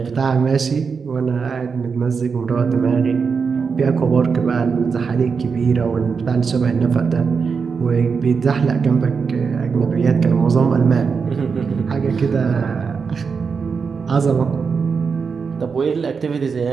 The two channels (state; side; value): quieter; left; 5.5 dB